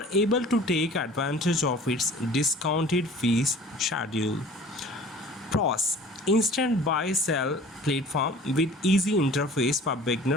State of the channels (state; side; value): normal; both; correlation 0.46